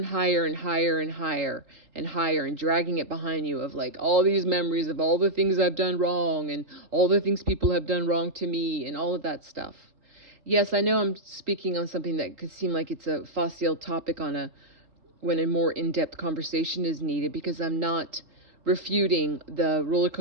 higher and higher and higher and higher and dragging it behind you, of like all these memories of all the things I've done wrong and all the things people have done wrong to me and all of that stuff. Yes, I know I'm speaking on something that could seem like it's a facile topic when a more in-depth conversation is needed, because I'm not refuting the roller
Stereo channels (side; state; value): left; late; 3.8 ms